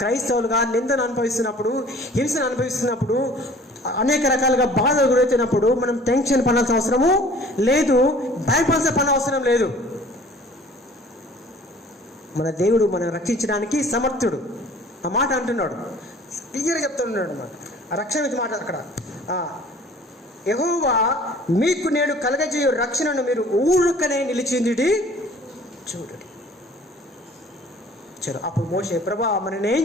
నిందను అనుభవిస్తున్నప్పుడు, హింసను అనుభవిస్తున్నప్పుడు, అనేక రకాలుగా బాధలు గురవుతున్నప్పుడు మనం టెన్షన్ పడాల్సిన అవసరము లేదు, భయపడాల్సిన పని అవసరం లేదు. మన దేవుడు మనం రక్షించడానికి సమర్థుడు. ఆ మాట అంటున్నాడు, క్లియర్గా చెప్తున్నాడు అన్నమాట. ఆ రక్షణ మీద మాట అక్కడ, యెహోవా మీకు నేడు కలగజేయు రక్షణను మీరు ఊరుకనే నిలిచింది చూడండి. చలో, అప్పుడు మోషే, ప్రభా మరి నేనేం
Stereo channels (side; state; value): both; normal; correlation 0.50